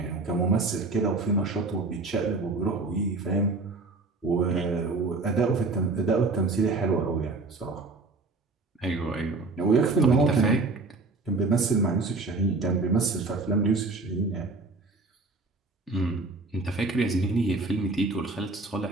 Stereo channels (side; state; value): left; quieter; 3.5 dB